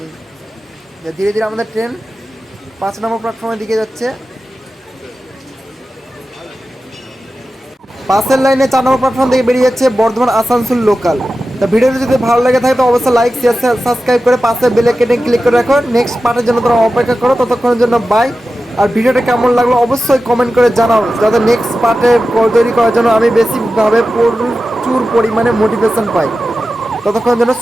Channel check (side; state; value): both; normal; correlation 0.93